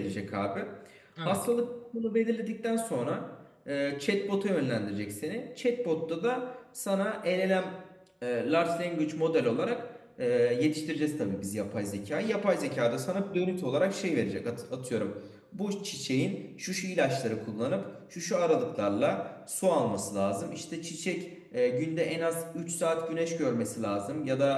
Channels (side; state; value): both; identical; correlation 1.00